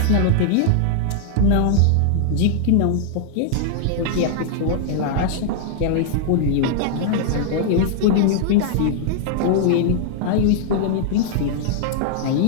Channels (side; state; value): both; different; correlation -0.01